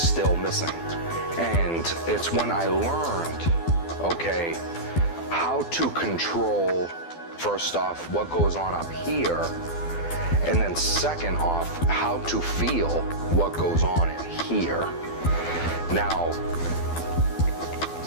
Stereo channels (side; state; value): right; late; 12 ms